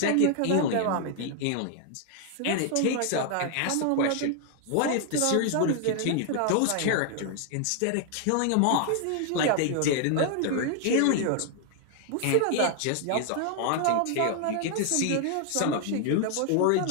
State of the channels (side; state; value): both; different; correlation 0.00